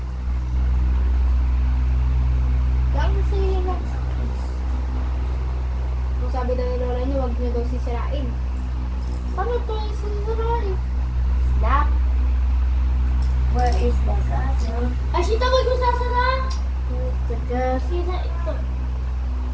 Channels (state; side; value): identical; both; correlation 1.00